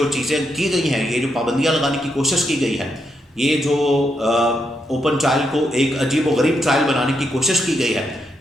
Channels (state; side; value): normal; both; correlation 0.80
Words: چیزیں کی گئی ہیں، یہ جو پابندیاں لگانے کی کوشش کی گئی ہے، یہ جو اوپن ٹرائل کو ایک عجیب و غریب ٹرائل بنانے کی کوشش کی گئی ہے،